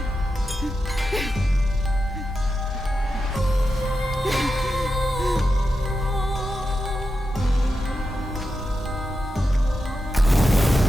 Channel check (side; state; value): both; normal; correlation 0.89